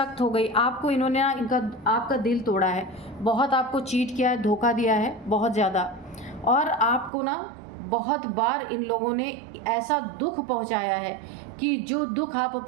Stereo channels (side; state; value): left; drops out; at 7.1 s